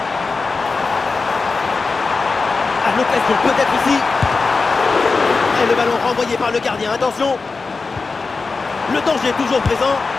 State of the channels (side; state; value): right; quieter; 4.2 dB